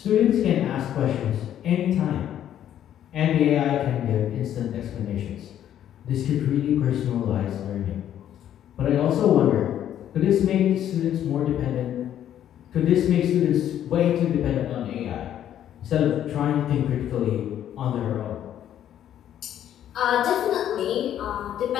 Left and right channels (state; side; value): quieter; right; 10.8 dB